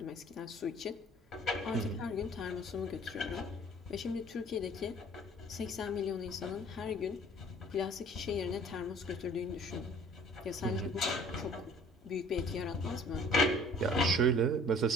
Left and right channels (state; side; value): normal; both; correlation 0.52